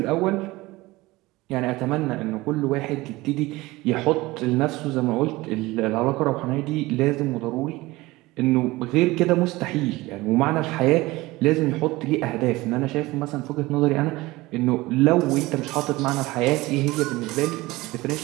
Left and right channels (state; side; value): quieter; left; 20.2 dB